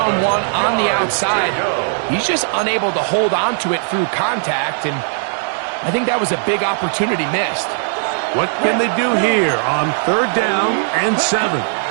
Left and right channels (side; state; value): left; silent; 68 dB below the other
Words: on the outside. He's just unable to hold on to it through contact, and I think that was a big opportunity missed. What can they do here on third down and 7?